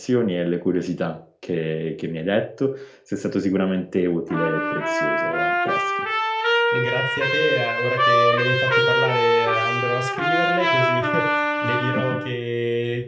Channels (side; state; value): both; identical; correlation 1.00